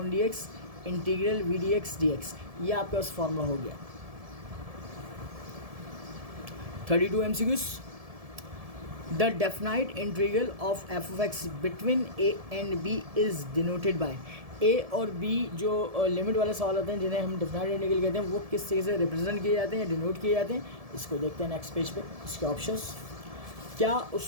d x integral v d x D x, ये आपके पास फॉर्मूला हो गया। 32 MCQs, the definite integral of f of x between a and b is denoted by, a और b जो limit वाले सवाल होते हैं जिन्हें हम डेफिनाइट इंटीग्रल कहते हैं, वो किस चीज़ से रिप्रेजेंट किए जाते हैं, डिनोट किए जाते हैं, इसको देखते हैं नेक्स्ट पेज पे। इसके ऑप्शंस, क्या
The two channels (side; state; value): left; late; 1.7 ms